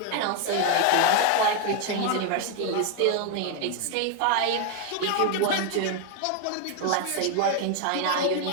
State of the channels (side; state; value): both; different; correlation 0.01